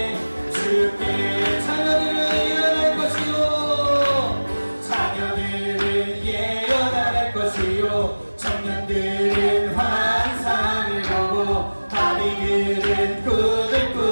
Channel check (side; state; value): both; inverted; correlation -1.00